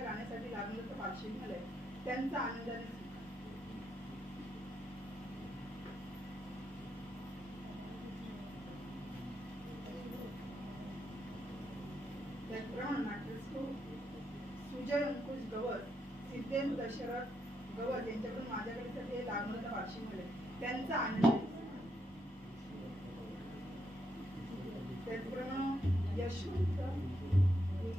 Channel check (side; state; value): both; normal; correlation 0.79